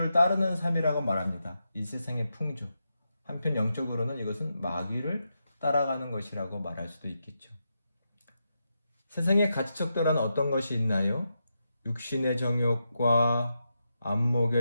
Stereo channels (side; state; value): both; inverted; correlation -0.86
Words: 따르는 삶이라고 말합니다. 이 세상의 풍조. 한편 영적으로는 이것은 마귀를 따라가는 것이라고 말할 수도 있겠죠. 세상의 가치척도란 어떤 것이 있나요? 육신의 정욕과